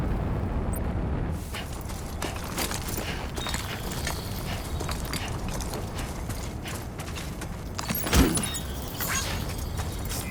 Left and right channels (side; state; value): both; identical; correlation 1.00